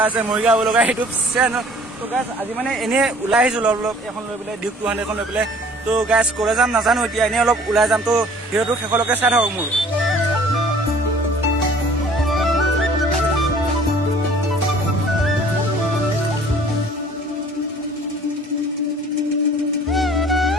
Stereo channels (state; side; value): normal; both; correlation 0.52